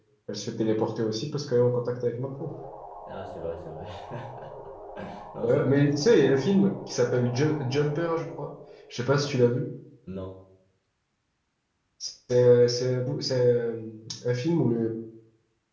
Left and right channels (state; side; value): identical; both; correlation 1.00